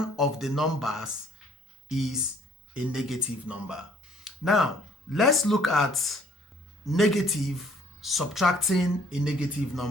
of the numbers is a negative number. Now, let's look at negative subtracting a negative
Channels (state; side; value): normal; both; correlation 0.60